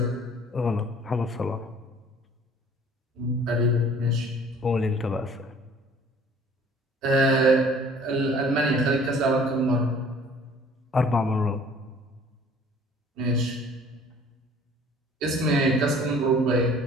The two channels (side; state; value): both; normal; correlation 0.52